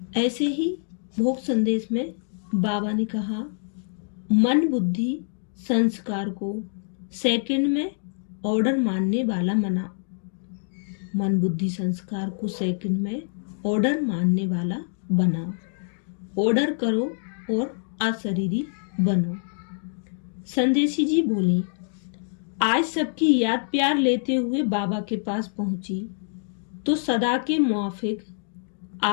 ऐसे ही भोग संदेश में बाबा ने कहा, मन बुद्धि संस्कार को सेकंड में ऑर्डर मानने वाला बना। मन बुद्धि संस्कार को सेकंड में ऑर्डर मानने वाला बनाओ। ऑर्डर करो और अशरीरी बनो। संदेशी जी बोली, आज सबकी याद प्यार लेते हुए बाबा के पास पहुंची तो सदा के मुआफिक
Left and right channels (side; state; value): right; silent; digital silence